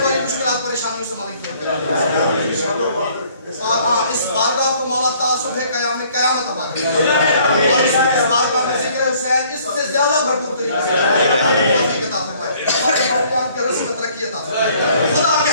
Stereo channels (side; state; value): both; inverted; correlation -0.59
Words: वाली मुश्किलात परेशानियों से मालिक दूर करे। और हाँ, इस बारगाह को मौला तासुब है क़यामत अता करे। और इस बारगाह में ज़िक्र हुसैन इससे ज़्यादा भरपूर तरीके से तौफीक अता फरमाए। हमारे मौलाना के रसूल को तरक्की अता फरमाए। खुदा के